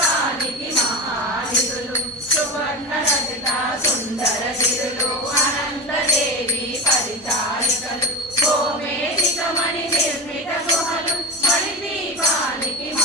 మహానిధులు సువర్ణ రచిత సుందర గిరులు అనంతదేవి పరిచారికలు గోమేధికమణి నిర్మిత గుహలు మణిదీపానికి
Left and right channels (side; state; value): both; normal; correlation 0.22